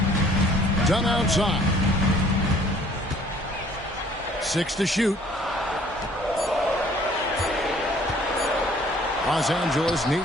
Done outside. 6 to shoot. Los Angeles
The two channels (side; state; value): both; normal; correlation 0.56